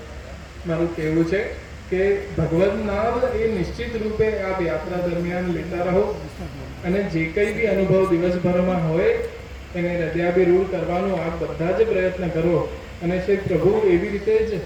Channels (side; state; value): both; identical; correlation 1.00